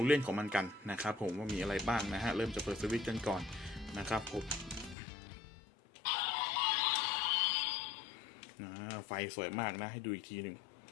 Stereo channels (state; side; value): drops out; right; at 5.0 s